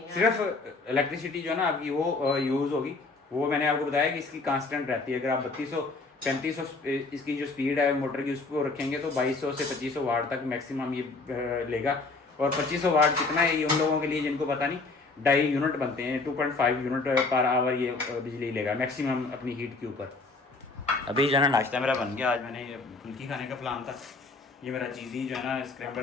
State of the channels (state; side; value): quieter; right; 3.8 dB